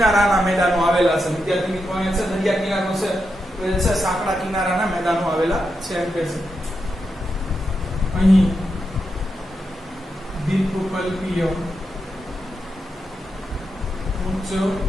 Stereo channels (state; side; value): normal; both; correlation 0.86